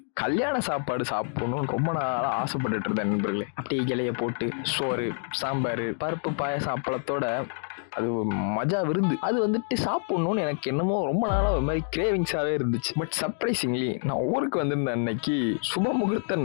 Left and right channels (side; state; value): right; silent; digital silence